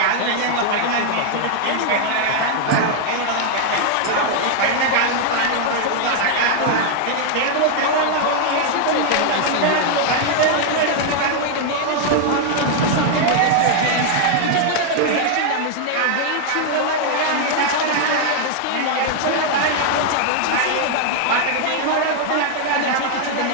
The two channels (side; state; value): both; different; correlation 0.00